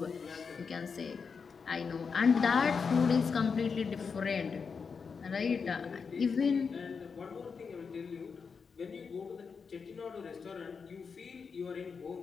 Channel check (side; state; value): right; quieter; 5.6 dB